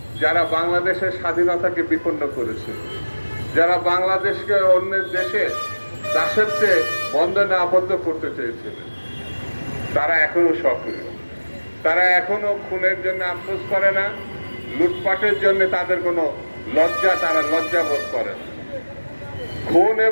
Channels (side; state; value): both; inverted; correlation -1.00